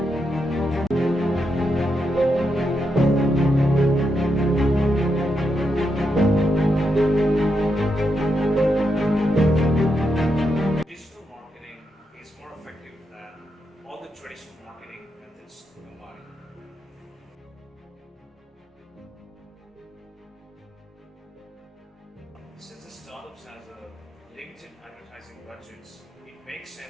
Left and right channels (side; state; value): both; normal; correlation 0.83